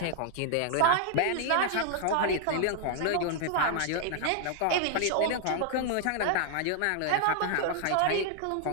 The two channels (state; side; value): different; both; correlation 0.00